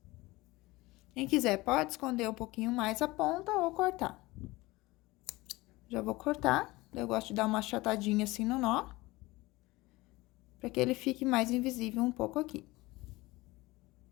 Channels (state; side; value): quieter; right; 20.8 dB